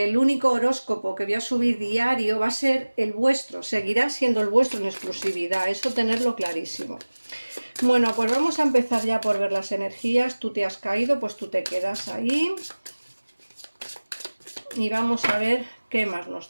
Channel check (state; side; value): inverted; both; correlation -1.00